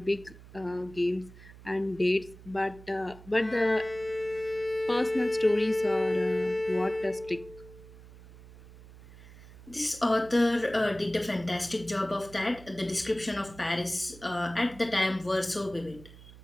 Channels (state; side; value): noise; right; hum, 19 dB below the sound